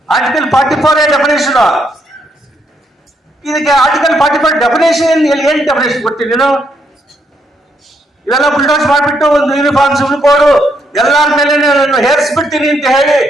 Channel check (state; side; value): normal; both; correlation 0.75